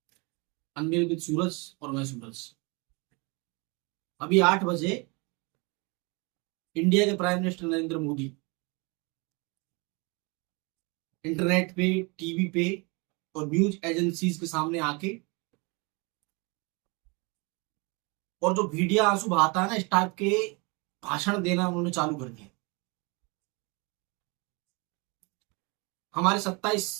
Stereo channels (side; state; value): left; quieter; 29.4 dB